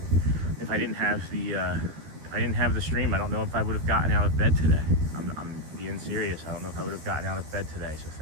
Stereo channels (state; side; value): late; left; 13 ms